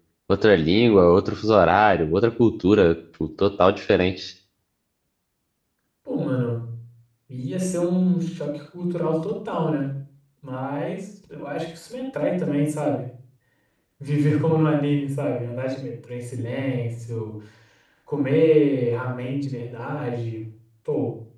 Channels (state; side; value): identical; both; correlation 1.00